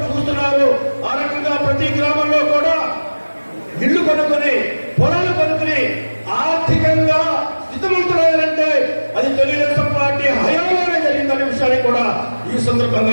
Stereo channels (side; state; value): both; inverted; correlation -1.00